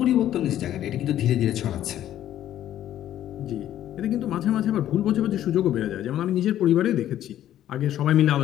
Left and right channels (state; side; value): quieter; right; 12.0 dB